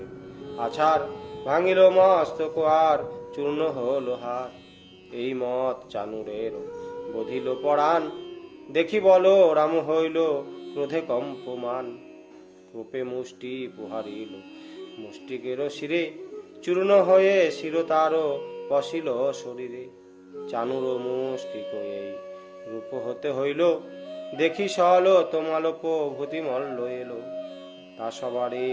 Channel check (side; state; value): both; identical; correlation 1.00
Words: আছার, ভাঙিল মস্তক আর চূর্ণ হল হার। এই মত চানুরের বধিল পরাণ, দেখি বল রাম হইল ক্রোধে কম্পমান। রূপে মুষ্টি পুহারিল মুষ্টিকের শিরে, চূর্ণ হয়ে শির তার পশিল শরীরে। চানুর মুষ্টিক এই রূপ হতে হইল, দেখি সল তোমালোপ ভূতি মল্ল এলো। তা সবারে